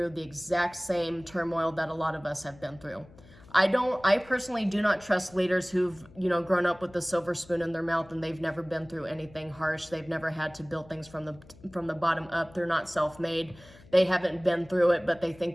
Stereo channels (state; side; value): noise; left; hum, 23 dB below the sound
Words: the exact same turmoil that a lot of us have been through. I personally do not trust leaders who've, you know, grown up with the silver spoon in their mouth and they've never been through anything harsh. They've never had to build things from the bottom up. They're not self-made. They haven't been through it, but they